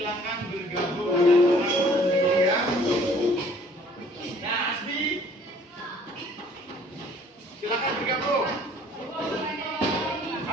bergabung dengan teman sendiri ya. Nah, Asbi, silakan bergabung.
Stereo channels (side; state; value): both; normal; correlation 0.56